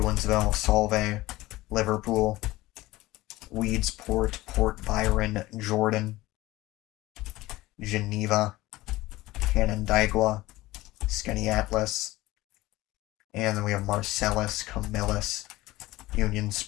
Solvay, Liverpool, Weedsport, Port Byron, Jordan, Geneva, Canandaigua, Skaneateles, and then we have Marcellus, Camillus, Union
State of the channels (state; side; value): quieter; right; 18.5 dB